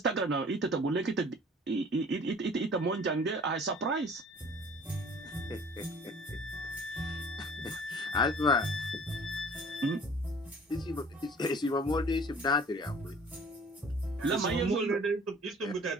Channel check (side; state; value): both; normal; correlation 0.50